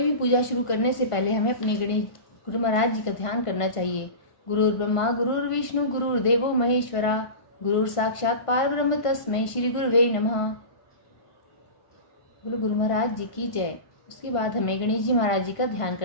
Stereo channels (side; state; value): right; late; 1.5 ms